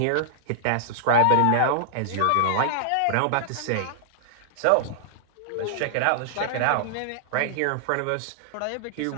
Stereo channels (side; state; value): both; different; correlation -0.01